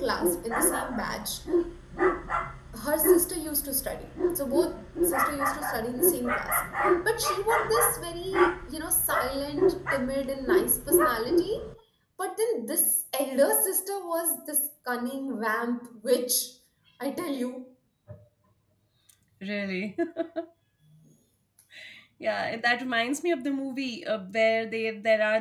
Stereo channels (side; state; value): both; identical; correlation 1.00